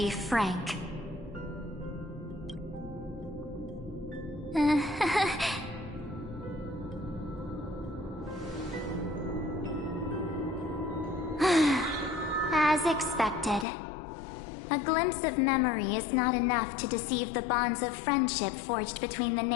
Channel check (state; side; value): drops out; right; at 13.7 s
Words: frank. As expected. A glimpse of memory is not enough to deceive the bonds of friendship forged between the